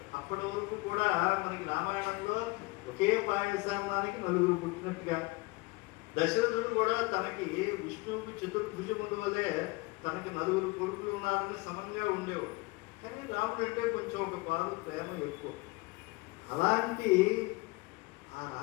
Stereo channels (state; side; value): quieter; right; 24.2 dB